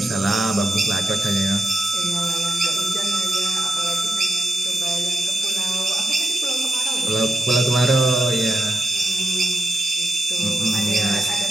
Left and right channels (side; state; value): both; normal; correlation 0.88